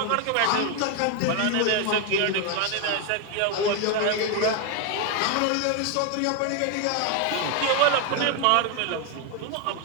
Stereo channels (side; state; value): both; different; correlation 0.01